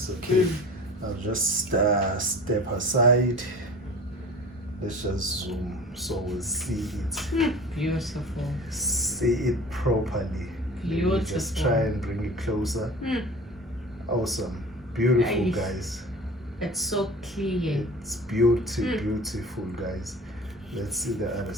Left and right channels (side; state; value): both; normal; correlation 0.40